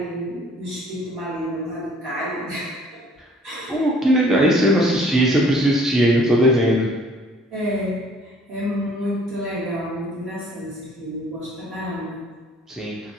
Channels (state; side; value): normal; both; correlation 0.57